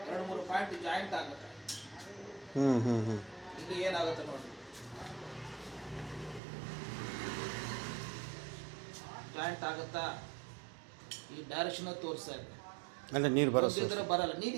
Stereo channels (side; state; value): left; drops out; at 6.4 s